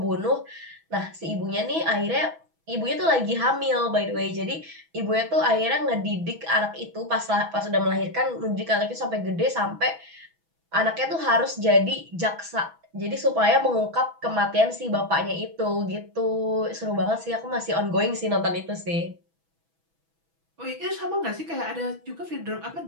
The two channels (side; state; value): left; late; 6.1 ms